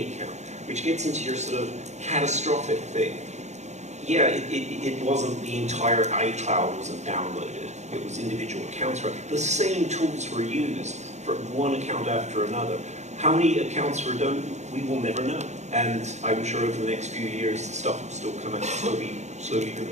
account, which gets into your sort of catastrophic thing. Yeah, it wasn't the entire iCloud wasn't downloaded. It was individual accounts. The same tools were used for one account after another. How many accounts were done, we will never know. And I'm sure over the next few years, the stuff will still come out slowly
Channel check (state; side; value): late; left; 0.33 ms